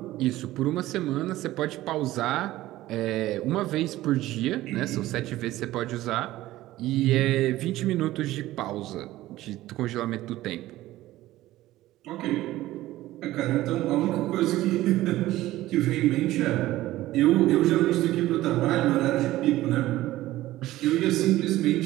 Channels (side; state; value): left; quieter; 16.0 dB